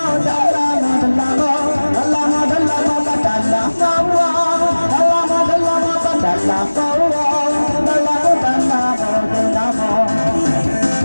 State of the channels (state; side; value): inverted; both; correlation -1.00